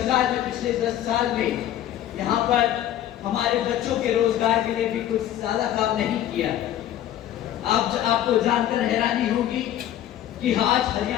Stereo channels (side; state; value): right; quieter; 11.9 dB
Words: ने पिछले 10 साल में यहाँ पर हमारे बच्चों के रोजगार के लिए भी कुछ ज्यादा काम नहीं किया। आपको जानकर हैरानी होगी कि आज